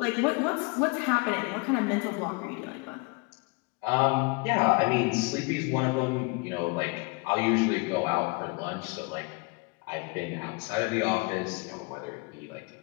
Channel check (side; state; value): right; quieter; 29.6 dB